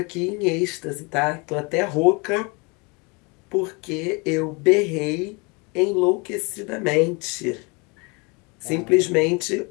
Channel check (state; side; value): quieter; right; 29.5 dB